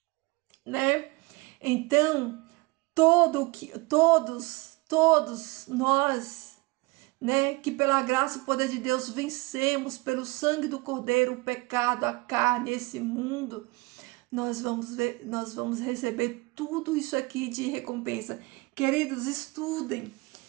né? Então, todos nós, né, que pela graça e poder de Deus vencemos pelo sangue do Cordeiro o pecado, a carne, esse mundo, nós vamos receber tudo isso aqui de recompensa. Queridos, estudem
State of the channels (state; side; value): quieter; left; 24.8 dB